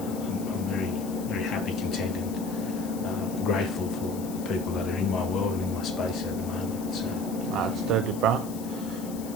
very, very happy, content, and grateful for the people that are in my world and in my space at the moment. So That's totally, bro.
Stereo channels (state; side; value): noise; left; hiss, 15 dB below the sound